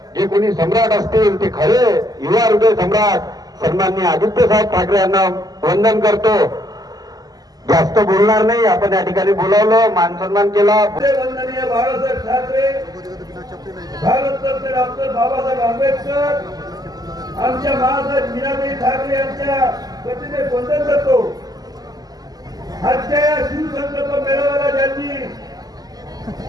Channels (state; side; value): late; left; 0.18 ms